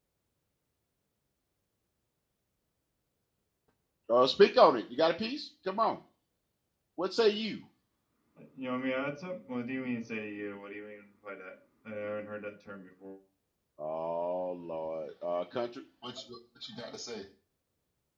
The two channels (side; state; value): both; identical; correlation 1.00